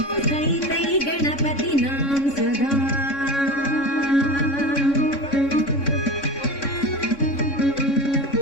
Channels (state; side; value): late; right; 3.6 ms